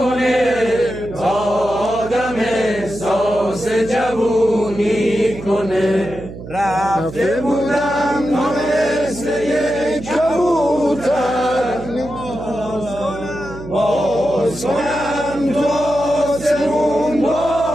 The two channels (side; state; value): right; noise; hum, 13 dB below the sound